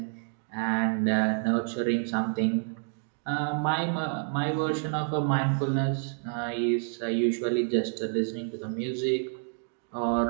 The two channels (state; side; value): silent; left; 59 dB below the other